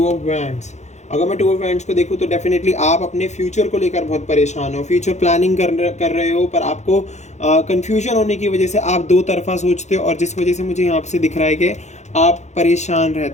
ऑफ वैंड्स। अगर मैं 2 ऑफ वैंड्स को देखूँ तो डेफिनेटली आप अपने फ्यूचर को लेकर बहुत परेशान हो, फ्यूचर प्लानिंग कर रहे हो, पर आपको कन्फ्यूजन होने की वजह से आप 2 तरफा सोचते हो, और जिस वजह से मुझे यहाँ से दिख रहा है कि आप परेशान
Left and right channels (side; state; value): right; late; 0.33 ms